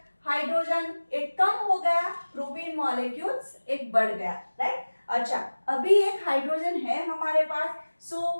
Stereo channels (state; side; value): inverted; both; correlation -1.00